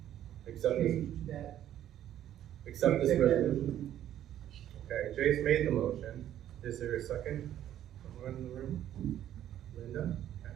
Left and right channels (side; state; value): left; quieter; 11.6 dB